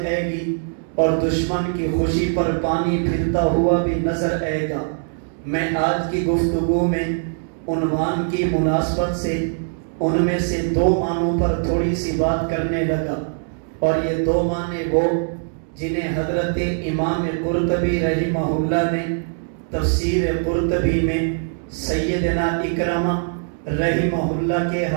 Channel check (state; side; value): silent; left; digital silence